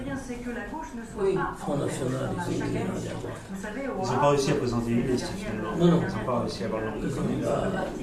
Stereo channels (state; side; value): identical; both; correlation 1.00